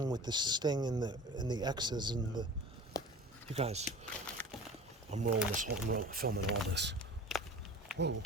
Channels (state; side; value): normal; both; correlation 0.38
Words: with the sting and the X's and the. You guys, I'm filming all this. Whoa.